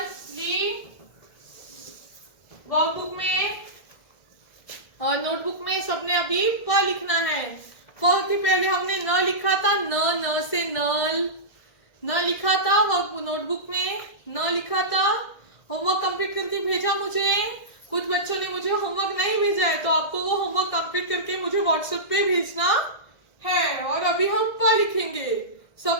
ली? वर्कबुक में और नोटबुक में सबने अभी प लिखना है। प के पहले हमने न लिखा था, न से नल, न लिखा था नोटबुक में, न लिखा था। होमवर्क कंप्लीट करके भेजा मुझे। कुछ बच्चों ने मुझे होमवर्क नहीं भेजा है, तो आपको वो होमवर्क कंप्लीट करके मुझे व्हाट्सएप पे भेजना है। और अभी हम प लिखेंगे।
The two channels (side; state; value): right; late; 1.7 ms